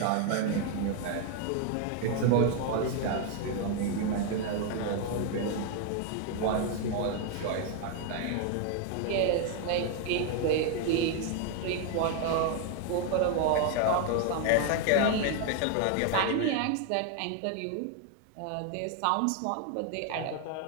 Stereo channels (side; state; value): both; different; correlation 0.00